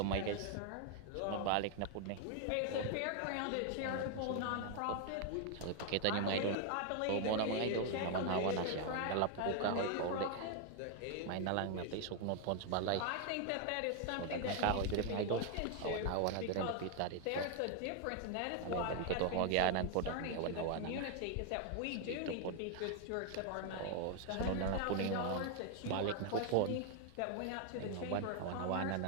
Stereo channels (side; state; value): both; different; correlation 0.00